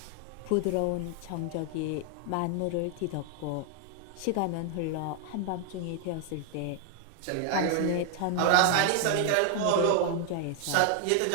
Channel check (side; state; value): both; different; correlation 0.00